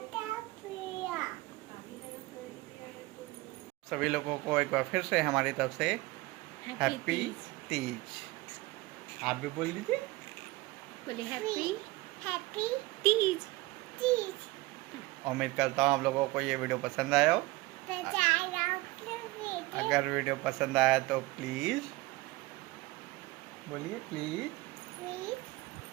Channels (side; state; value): left; quieter; 21.0 dB